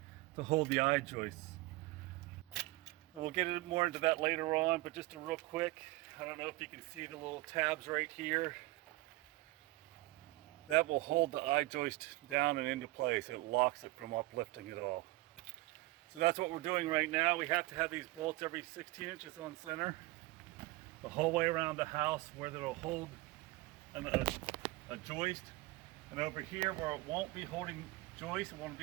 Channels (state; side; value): quieter; left; 20.4 dB